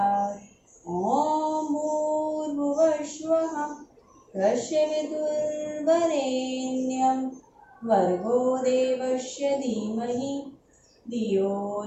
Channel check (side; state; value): both; identical; correlation 1.00